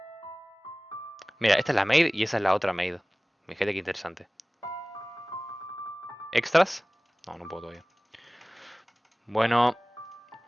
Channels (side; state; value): both; normal; correlation 0.98